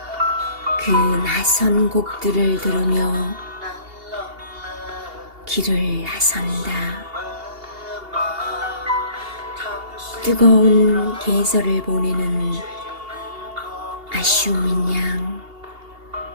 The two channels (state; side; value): late; left; 2.8 ms